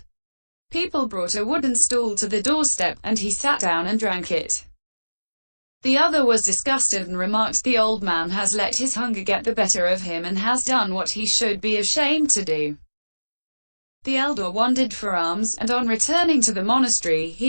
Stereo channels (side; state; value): both; inverted; correlation -1.00